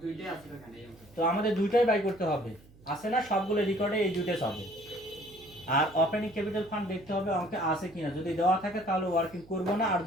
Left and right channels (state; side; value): noise; right; hum, 25 dB below the sound